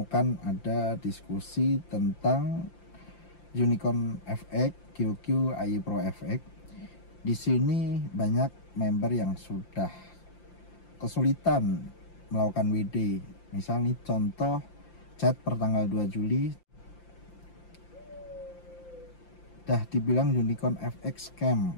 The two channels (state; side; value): late; right; 5.8 ms